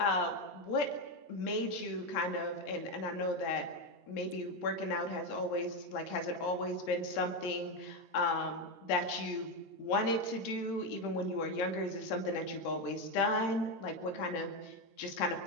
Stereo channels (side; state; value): right; late; 13 ms